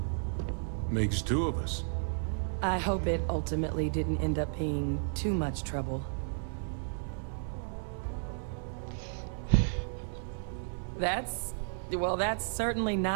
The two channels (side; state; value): left; silent; 56 dB below the other